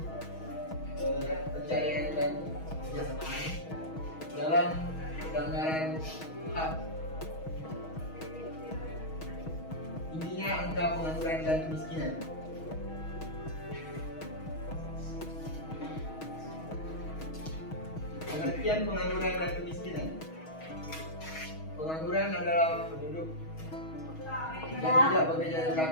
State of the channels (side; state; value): right; late; 6.3 ms